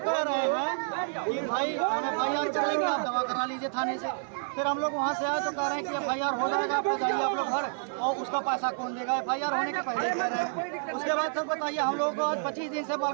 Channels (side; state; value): left; silent; 58 dB below the other